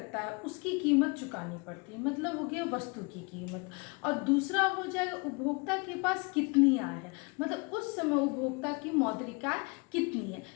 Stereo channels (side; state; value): right; quieter; 30.7 dB